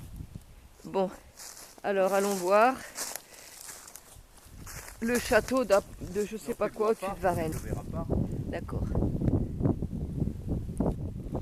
Bon, alors allons voir le château de je sais pas quoi au-dessus de Varennes. Tu ne verras pas. D'accord.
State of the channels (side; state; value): both; identical; correlation 1.00